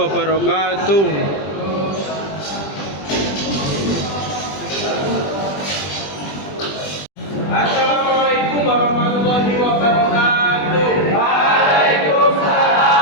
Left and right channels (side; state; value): right; late; 20 ms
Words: Assalamualaikum warahmatullahi wabarakatuh.